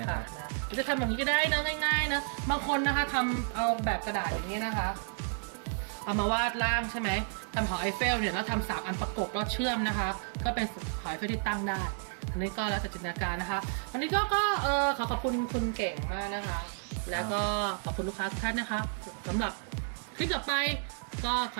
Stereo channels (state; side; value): silent; left; 57 dB below the other